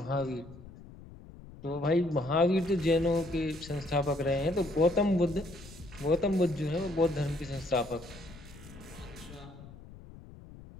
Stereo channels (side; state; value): left; noise; rumble, 18 dB below the sound